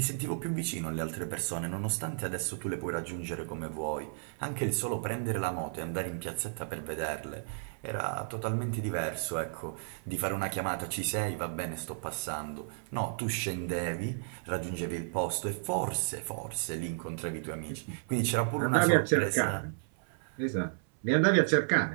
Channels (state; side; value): silent; left; 55 dB below the other